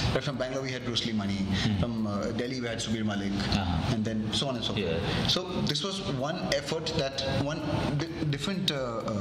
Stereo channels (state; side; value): identical; both; correlation 1.00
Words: Right, from Bangalore we had Bruce Lee Mani, from Delhi we had Subir Malik, and then so on and so forth. So this was one effort, one different